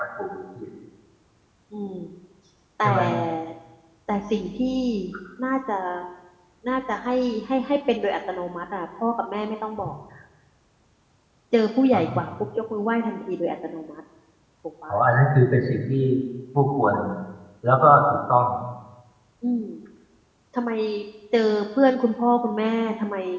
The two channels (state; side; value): identical; both; correlation 1.00